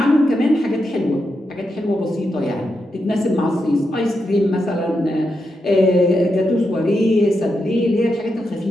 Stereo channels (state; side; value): normal; both; correlation 0.85